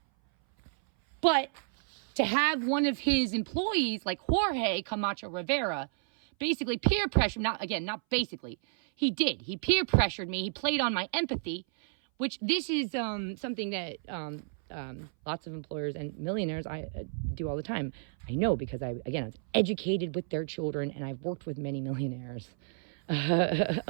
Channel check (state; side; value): silent; left; 57 dB below the other